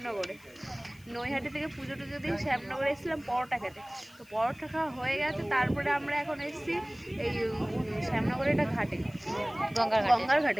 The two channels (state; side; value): noise; left; hiss, 26 dB below the sound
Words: নৈহাটি থেকে পুজো টুজো দিয়ে শ্যামনগরে এসেছিলাম পরোটা খেতে। তো পরোটা খাওয়া হয়ে গেছে, তারপরে আমরা এখন এসেছি এই শ্যামনগরের একটা ঘাটে, গঙ্গার